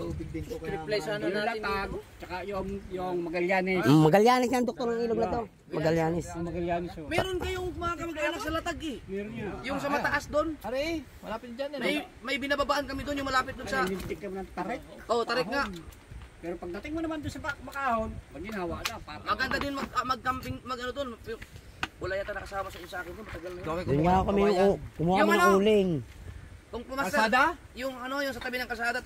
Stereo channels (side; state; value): both; identical; correlation 1.00